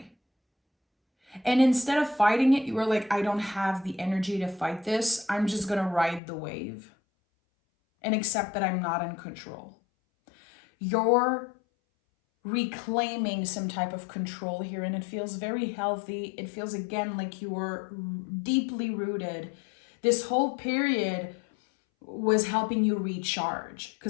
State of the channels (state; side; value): drops out; right; at 6.2 s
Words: And instead of fighting it, you were like, I don't have the energy to fight this. I'm just going to ride the wave and accept that I'm not in control. You're reclaiming some type of control here, and it feels very healthy. It feels, again, like you were deeply rooted. This whole period was helping you recharge,